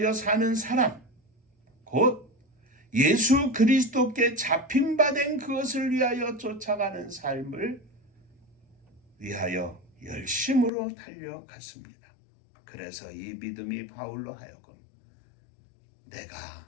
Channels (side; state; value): right; drops out; at 10.7 s